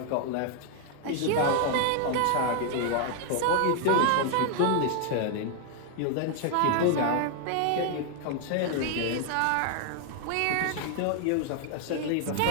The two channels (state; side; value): different; both; correlation 0.00